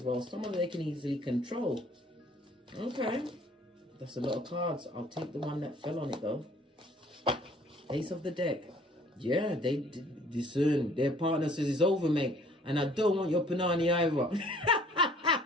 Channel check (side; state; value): both; normal; correlation 0.57